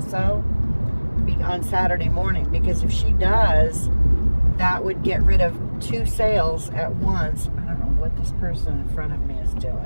on Saturday morning, because if she does, that would get rid of 2 sales at once. I don't know what this person in front of me is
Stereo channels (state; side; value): inverted; both; correlation -1.00